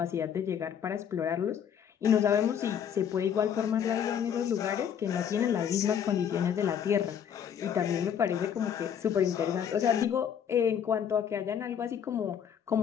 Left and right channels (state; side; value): quieter; right; 8.5 dB